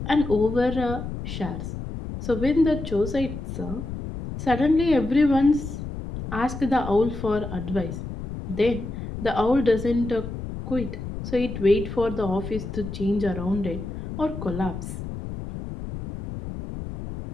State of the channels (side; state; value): left; noise; rumble, 8 dB below the sound